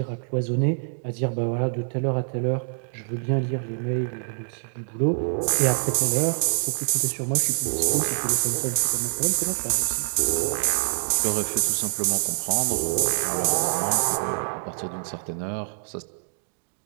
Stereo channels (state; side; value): silent; left; digital silence